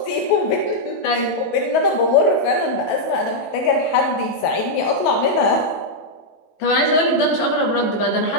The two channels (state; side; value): late; right; 18 ms